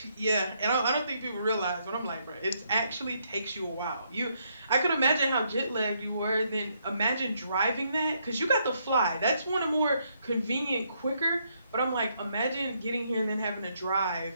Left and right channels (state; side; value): inverted; both; correlation -0.74